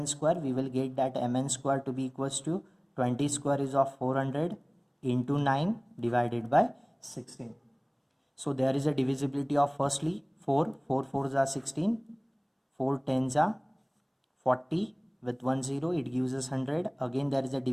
square, we will get that MN square to be equals to 20 square is of 400 into 9 divided by 16. So there is a divisibility of firstly 4 4s are 16, 4 10s are 40, with 1 0 it gives us 100. Again there is a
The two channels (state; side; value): identical; both; correlation 1.00